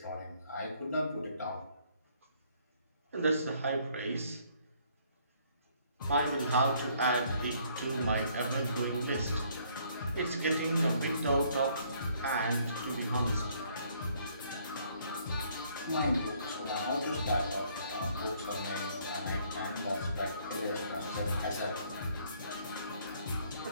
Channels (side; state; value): both; inverted; correlation -0.64